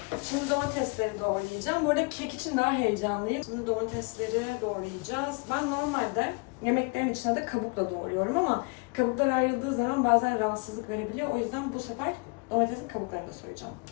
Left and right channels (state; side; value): quieter; right; 31.2 dB